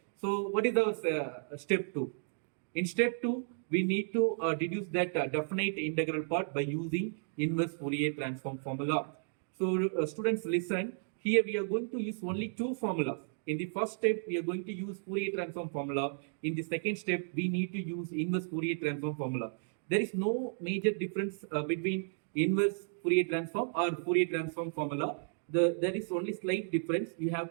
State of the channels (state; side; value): silent; left; digital silence